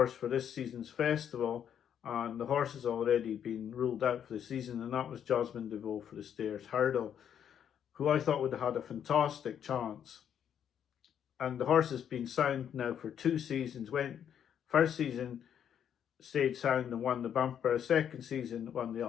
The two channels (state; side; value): quieter; right; 9.0 dB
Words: for this season's festival, and the horse has already been ruled out for the season, and that was Jasmine DeVoe for the Stairs Hurdle, who I thought would have had a fantastic chance. And the horse has been sound now for 2 seasons. First season stayed sound and won the bumper. Second season won the